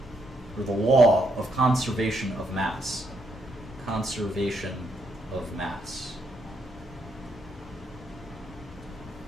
or the law of conservation of mass. Conservation of mass.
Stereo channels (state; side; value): normal; both; correlation 0.76